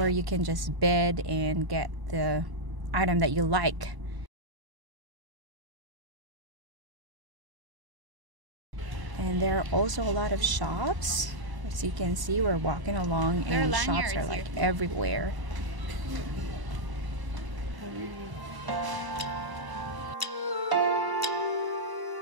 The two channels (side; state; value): left; late; 1.0 ms